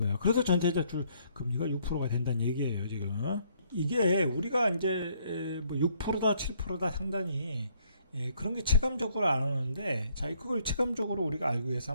그래서 전체대출 금리가 6%가 된다는 얘기예요. 지금. 이게 우리가 이제 뭐 6%다 7%다 상단이 그런 게 체감적으로 안 오는데, 자, 그걸 체감적으로 우리가 알기 위해서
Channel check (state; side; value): inverted; both; correlation -0.68